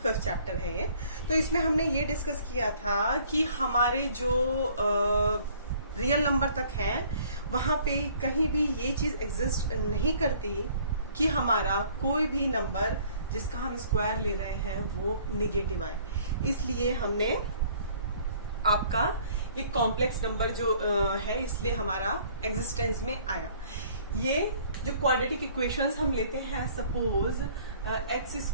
5th चैप्टर है ये। तो इसमें हमने ये डिस्कस किया था कि हमारे जो रियल नंबर तक हैं वहां पे कहीं भी ये चीज एग्जिस्ट नहीं करती कि हमारा कोई भी नंबर जिसका हम स्क्वायर ले रहे हैं वो निगेटिव आए। इसलिए हमने आपका ये कॉम्प्लेक्स नंबर जो है इसलिए हमारा एग्जिस्टेंस में आया। ये जो क्वाड्रेटिक इक्वेशंस हम लेते हैं, सपोज एक्स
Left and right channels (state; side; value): inverted; both; correlation -0.57